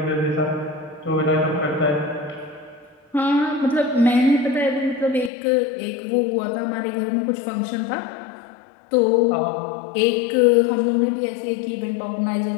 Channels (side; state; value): right; drops out; at 5.3 s